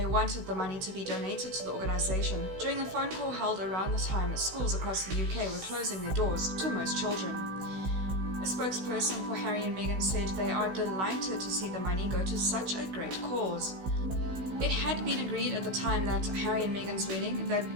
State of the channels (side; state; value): left; late; 16 ms